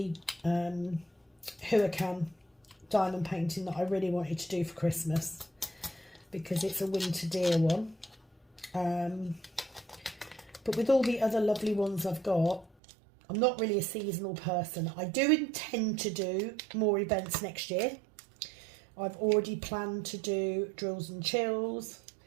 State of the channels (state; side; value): drops out; left; at 12.7 s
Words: Huracan diamond painting that I really wanted to do for Christmas, because it's a winter deer one. But with all the other lovely ones I've got, I'm not really a seasonal person. I do intend to do more events next year. I've already planned to do drills and chills.